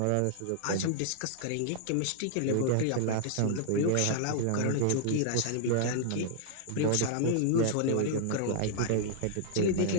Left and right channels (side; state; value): both; different; correlation -0.01